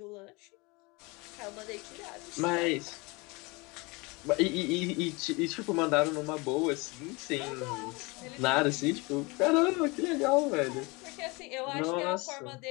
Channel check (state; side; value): quieter; right; 26.3 dB